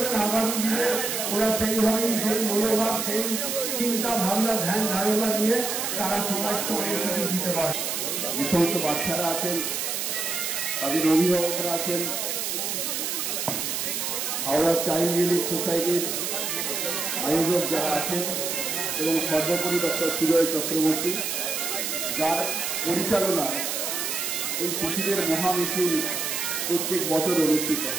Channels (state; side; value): noise; right; hiss, 1 dB below the sound